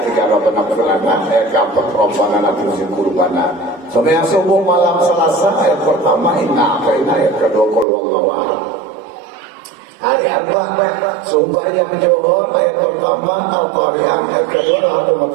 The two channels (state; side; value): drops out; left; at 7.9 s